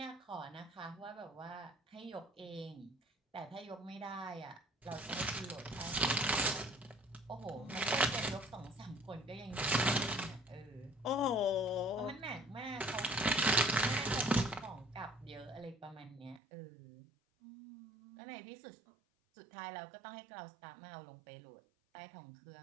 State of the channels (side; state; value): left; drops out; at 16.4 s